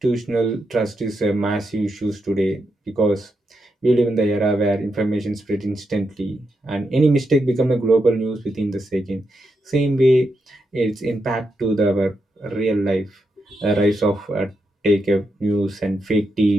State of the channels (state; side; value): normal; both; correlation 0.84